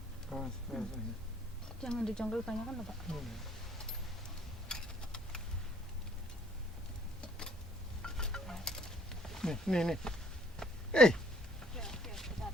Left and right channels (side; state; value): both; normal; correlation 0.60